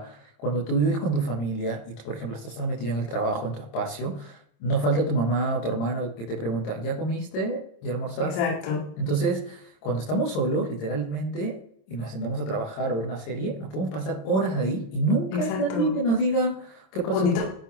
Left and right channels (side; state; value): right; late; 26 ms